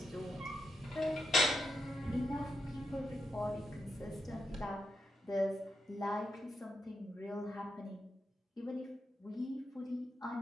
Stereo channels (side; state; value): both; normal; correlation 0.85